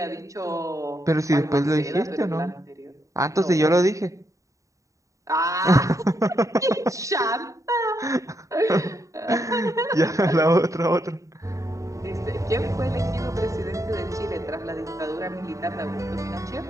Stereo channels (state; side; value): late; left; 0.16 ms